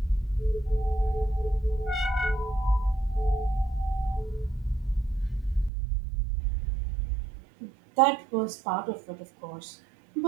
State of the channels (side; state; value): left; drops out; at 5.7 s